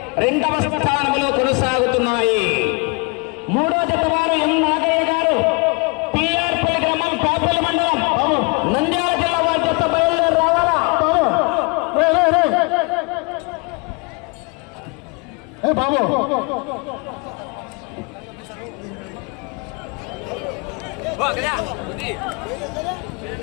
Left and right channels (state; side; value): quieter; right; 30.8 dB